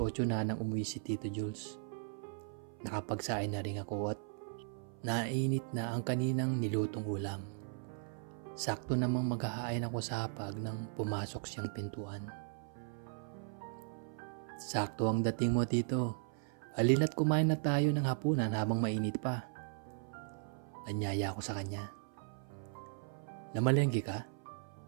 na nang umuwi si Tito Jules. Nakapagsain na rin ako at nainit na ang kaninang nilutong ulam. Sakto namang maghahain ako sa hapag nang pumasok siyang pintuan. Sakto ang dating mo, Tito. Halina't kumain na tayo ng hapunan habang mainit pa. Anyaya ko sa kanya. Namalengke ka?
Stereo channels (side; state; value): left; silent; 53 dB below the other